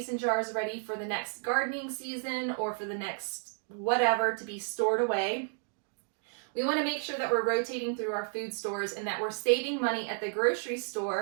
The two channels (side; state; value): left; silent; 56 dB below the other